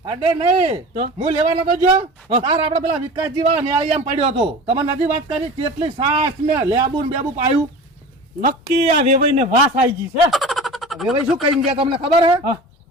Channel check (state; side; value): normal; both; correlation 0.35